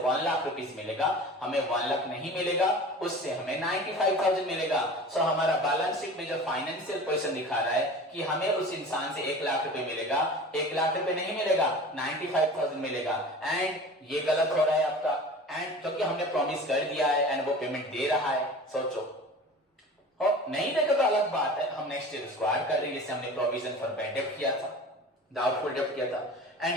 लाख रुपीस मिलेगा, हमें 1 लाख नहीं मिलेगा, उससे हमें 95,000 मिलेगा। सो हमारा बैलेंस शीट में जो फाइनेंशियल पोजीशन दिखा रहा है कि हमें उस इंसान से 1 लाख रुपए मिलेगा, 1 लाख रुपए नहीं मिलेगा, 95,000 मिलेगा। एंड ये गलत हो रहा है आपका, एंड क्योंकि हमने प्रॉमिस कर दिया है एंड वो पेमेंट दे रहा है। सोचो, नहीं देगा तो अलग बात है, हम नेक्स्ट ईयर उसको ऐड कर रहे हैं, जैसे हमने प्रोविजन फॉर बैड डेब्ट किया था, डाउटफुल डेब्ट किया था।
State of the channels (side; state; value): both; normal; correlation 0.38